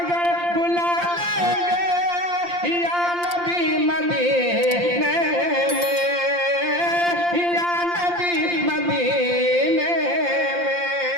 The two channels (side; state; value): left; late; 5.7 ms